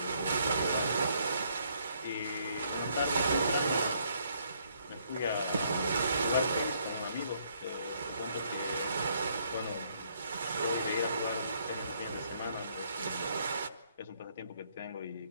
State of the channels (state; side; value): inverted; both; correlation -0.69